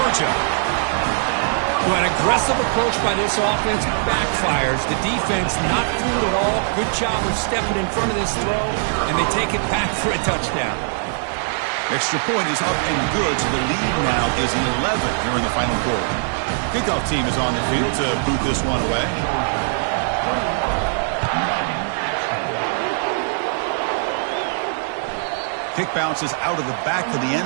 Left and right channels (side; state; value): left; silent; digital silence